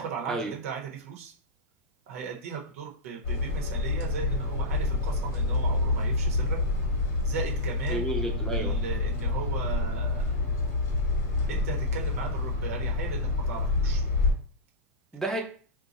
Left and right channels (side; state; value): both; normal; correlation -0.16